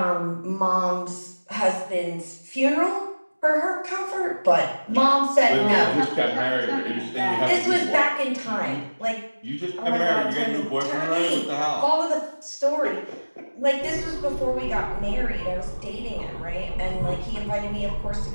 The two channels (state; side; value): inverted; both; correlation -1.00